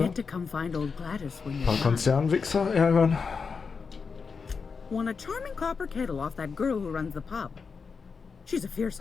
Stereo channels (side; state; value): right; quieter; 5.3 dB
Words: to come find old Gladys when you're Paar done. Konzernwichser ärgern. Won a charming copper kettle off that girl who runs the pub. She's a fierce